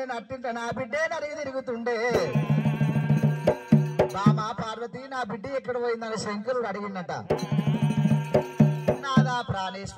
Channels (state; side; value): identical; both; correlation 1.00